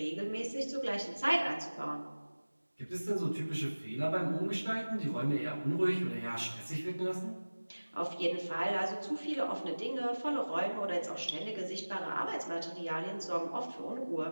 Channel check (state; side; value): inverted; both; correlation -1.00